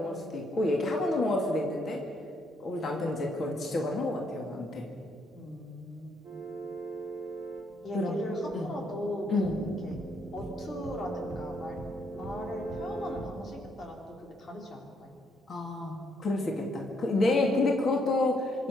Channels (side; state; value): both; normal; correlation 0.73